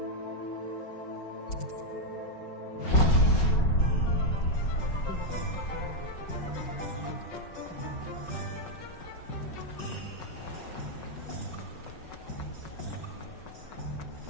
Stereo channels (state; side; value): late; right; 5.4 ms